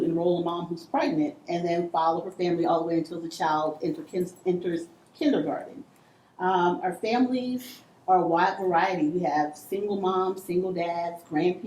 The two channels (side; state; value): both; identical; correlation 1.00